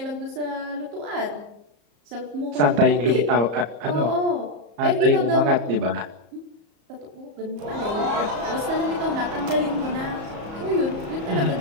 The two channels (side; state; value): left; late; 34 ms